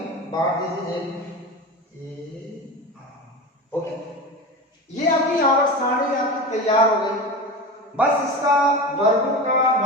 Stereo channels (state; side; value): normal; both; correlation 0.27